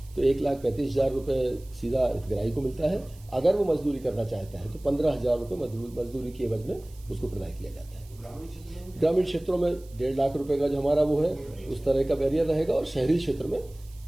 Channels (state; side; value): noise; right; hiss, 26 dB below the sound